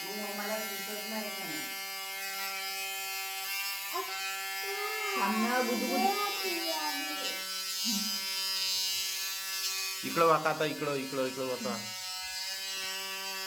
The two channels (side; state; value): both; identical; correlation 1.00